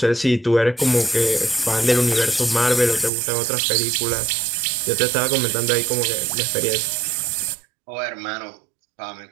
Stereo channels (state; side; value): drops out; left; at 3.1 s